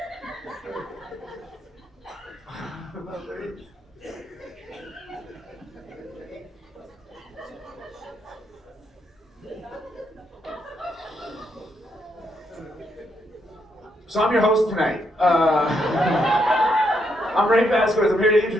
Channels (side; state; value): both; normal; correlation 0.77